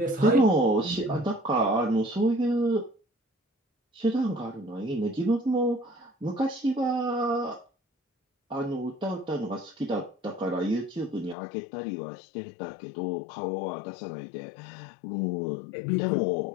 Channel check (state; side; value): drops out; right; at 11.4 s